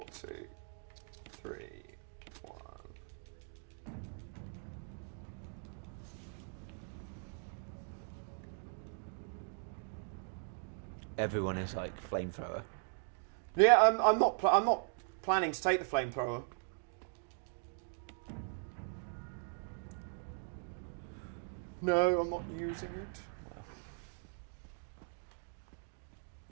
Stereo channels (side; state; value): left; silent; 52 dB below the other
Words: two, three, one. Everyone is like flamethrower. Yeah, I'm not planning to take the flamethrower. No, I'm not using it.